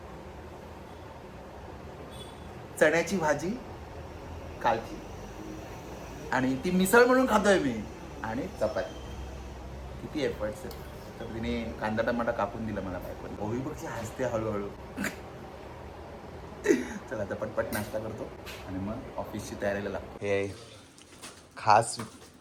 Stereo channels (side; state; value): both; identical; correlation 1.00